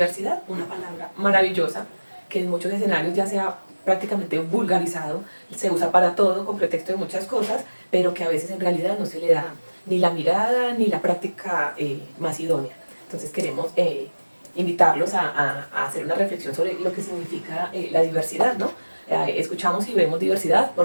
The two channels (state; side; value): inverted; both; correlation -1.00